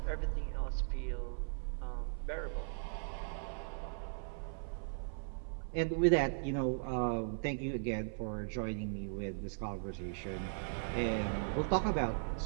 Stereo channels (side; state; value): left; silent; 52 dB below the other